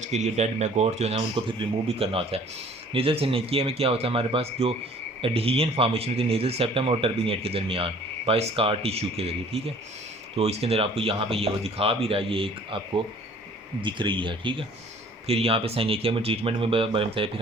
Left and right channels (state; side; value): normal; both; correlation 0.53